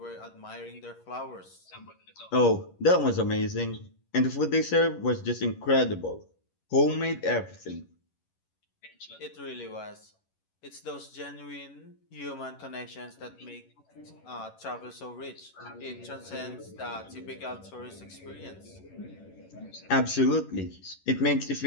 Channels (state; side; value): late; right; 11 ms